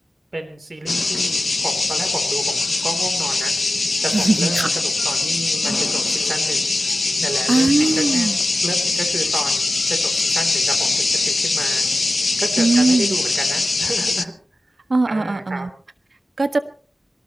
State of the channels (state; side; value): normal; both; correlation 0.93